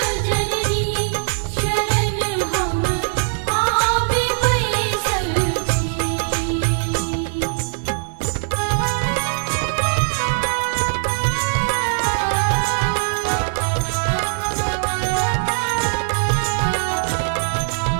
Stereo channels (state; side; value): silent; left; digital silence